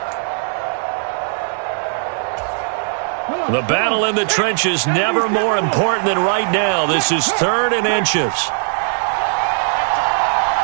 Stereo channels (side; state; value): left; silent; digital silence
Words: The battle in the trenches never more important than right now. This is 3rd and inches.